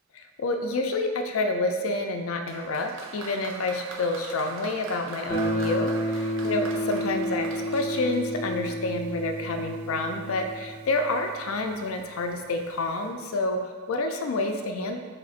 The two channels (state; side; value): normal; both; correlation 0.03